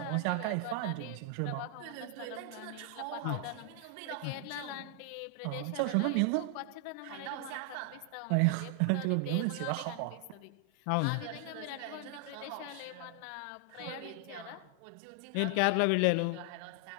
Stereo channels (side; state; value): both; different; correlation 0.00